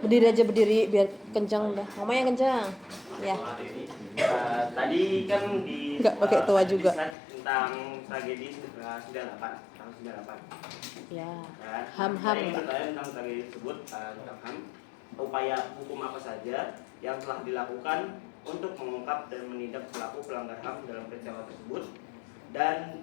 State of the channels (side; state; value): right; drops out; at 7.2 s